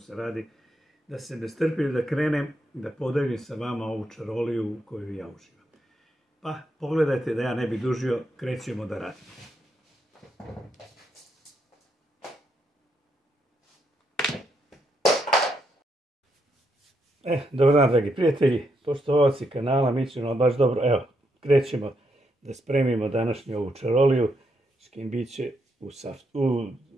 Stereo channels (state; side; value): normal; both; correlation 0.79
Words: radi, da se ne strpim da krenem, da podelim sa vama ovu čaroliju u koju ja uživam. Pa, pogledajte da ja ne bi dužio, krećemo da radimo. Dobar dan, dragi prijatelji, poštovaoci kanala Mićino, baš dobro. Evo, krećemo da spremimo današnju ovu čaroliju, škimbiće